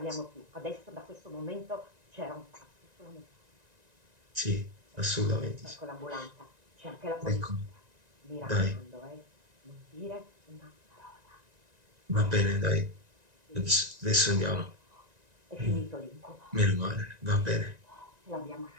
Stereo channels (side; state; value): left; late; 1.9 ms